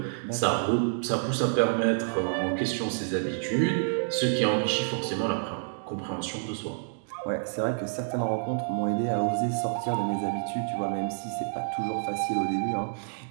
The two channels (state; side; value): silent; left; digital silence